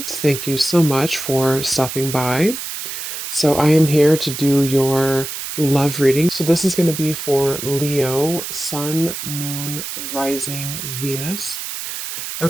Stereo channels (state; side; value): noise; right; hiss, 7 dB below the sound